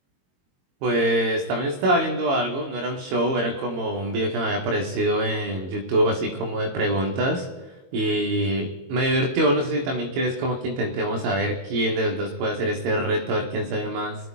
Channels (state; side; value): late; left; 22 ms